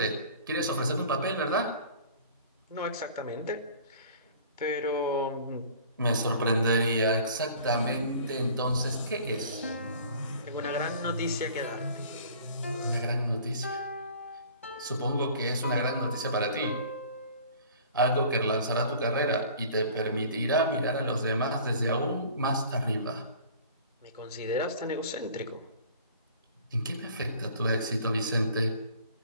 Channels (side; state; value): both; inverted; correlation -0.47